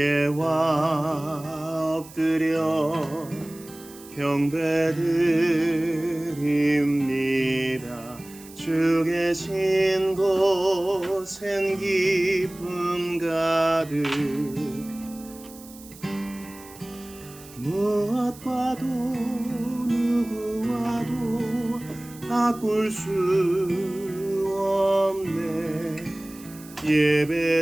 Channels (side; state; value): right; noise; hiss, 20 dB below the sound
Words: 엎드려 경배드립니다. 주 계신 곳엔 기쁨 가득 무엇과도 누구와도 바꿀 수 없네.